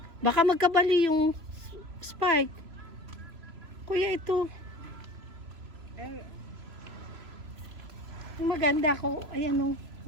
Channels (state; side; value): late; left; 3.0 ms